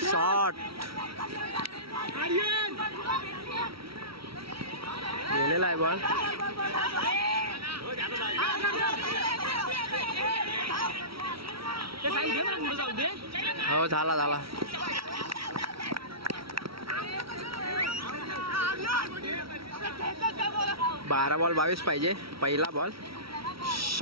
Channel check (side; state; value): left; late; 0.75 ms